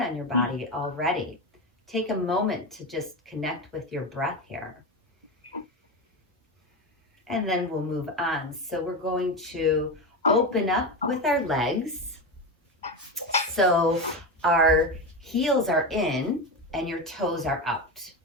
on your body already. Take a moment to just connect with your breath here. And then we'll move on. So we're going to open up with our legs. So our heels are in and your toes are out.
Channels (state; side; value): normal; both; correlation 0.18